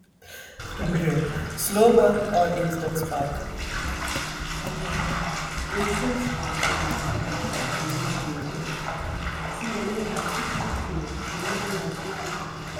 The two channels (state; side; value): identical; both; correlation 1.00